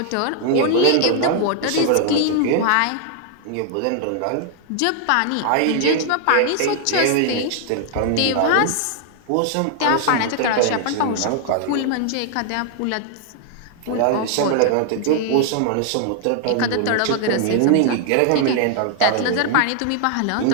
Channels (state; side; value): different; both; correlation 0.00